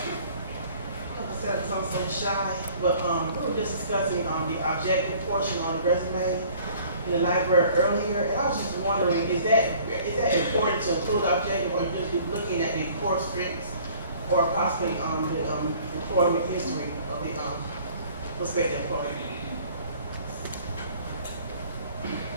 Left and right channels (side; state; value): both; inverted; correlation -0.53